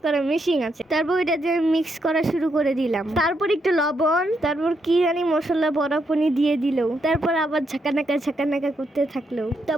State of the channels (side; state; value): both; normal; correlation 0.79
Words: করার মেশিন আছে। তারপর ওইটা যে মিক্স করা শুরু করে দিলাম। তারপর একটু লবণ, তারপর কি জানি মশলা বড়াপনি দিয়ে দিল। তারপর আবার ঝাঁকানাকা করতে থাকলো।